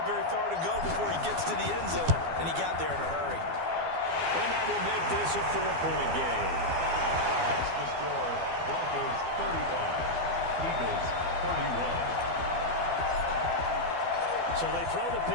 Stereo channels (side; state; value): left; late; 12 ms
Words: very far to go before he gets to the end zone, and he got there in a hurry. And that will make this a 4-point game. That's the score. Broncos 35, Eagles 31. So they throw the